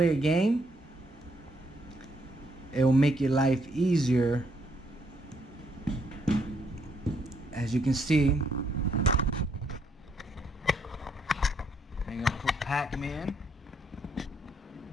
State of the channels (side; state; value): both; normal; correlation 0.72